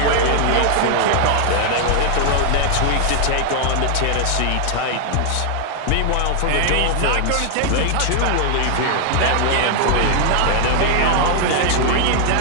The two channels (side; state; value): both; different; correlation 0.00